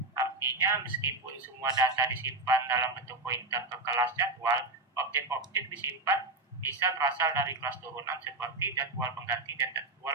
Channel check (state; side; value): quieter; left; 3.1 dB